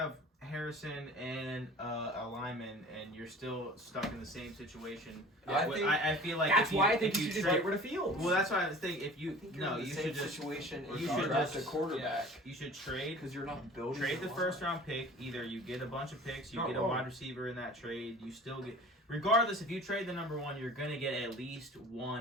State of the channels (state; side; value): normal; both; correlation 0.43